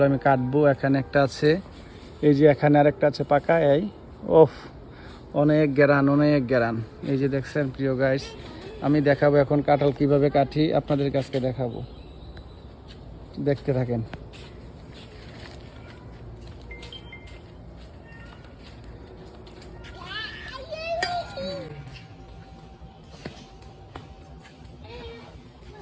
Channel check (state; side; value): identical; both; correlation 1.00